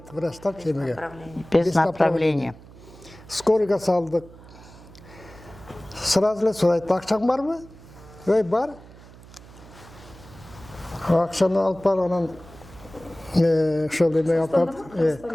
врачтар емеге. Без направления. Скорыйға салдық. Сразу ле сұрайды, ақшаң бар ма? Ой, бар. Ақшаны алып бар, анан шөл емеге алып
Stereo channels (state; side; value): noise; right; hum, 20 dB below the sound